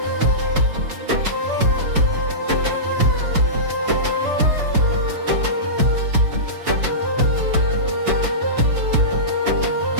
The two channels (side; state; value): left; late; 4.9 ms